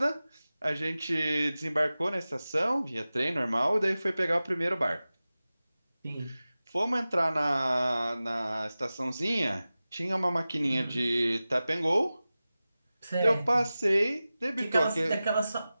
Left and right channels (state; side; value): inverted; both; correlation -0.96